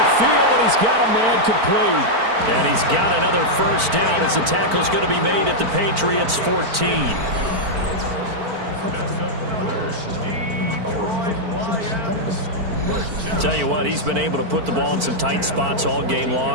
field, and he's got a man complete. And he's got another first down as the tackle's going to be made at the Patriots' 14. Tell you what, he's been able to put the ball in some tight spots all game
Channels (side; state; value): left; late; 4.5 ms